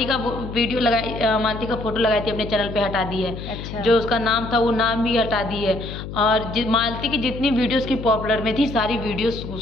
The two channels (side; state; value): left; noise; hum, 9 dB below the sound